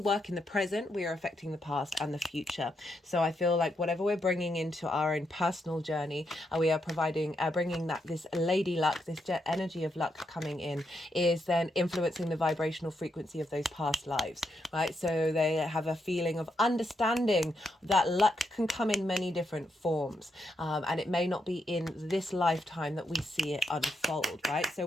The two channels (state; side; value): normal; both; correlation 0.81